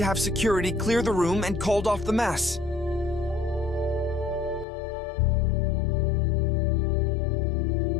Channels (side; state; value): right; drops out; at 4.7 s